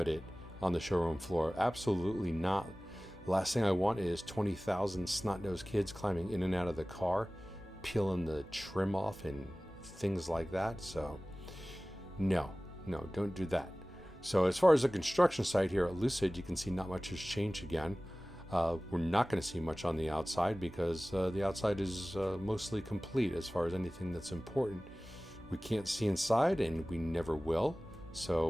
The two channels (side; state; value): both; normal; correlation 0.98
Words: it on the showroom floor. Absolutely not. Last thing I want is 20,000 snot-nosed kids climbing in and out of the car, peeling the trim off and things like that. So no, don't do that. So as far as the construction site here at Lucid, you can see not much has changed again. We're not going to see much on the outside because the outside is mostly complete as far as anything that's important. We can't see inside, and we never will. So